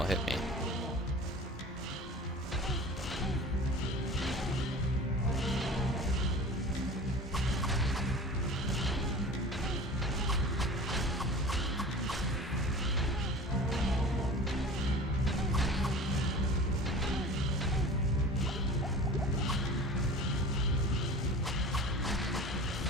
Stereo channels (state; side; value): normal; both; correlation 0.38